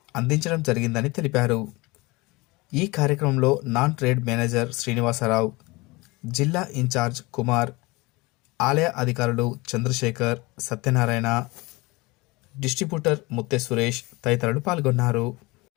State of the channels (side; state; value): right; quieter; 23.7 dB